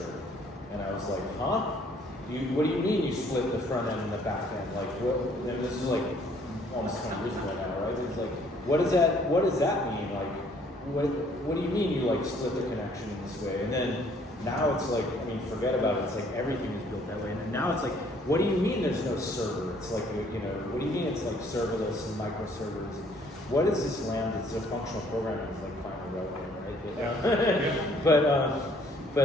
and I was like, huh? What do you mean you split the front end and the back end? Like, what? And this is like almost 20 years ago now, right? It's like, what does that mean? Like, what do you mean you like split the connection in this way? And then now it's like, I mean, forget about it. It's like everything is built that way. And now it's like, what do you mean there's no server? It's like, you know, what do you mean it's like serverless and microservers? What is this Lambda? It's a functional programming. It's like finally relevant, right?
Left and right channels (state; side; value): normal; both; correlation 0.61